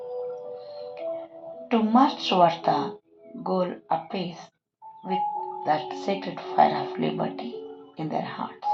to march towards the goal apace with that sacred fire of liberty in their hearts.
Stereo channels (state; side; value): identical; both; correlation 1.00